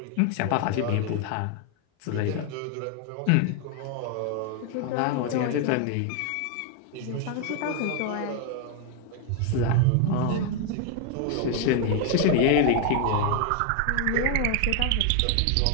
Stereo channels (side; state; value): both; different; correlation 0.01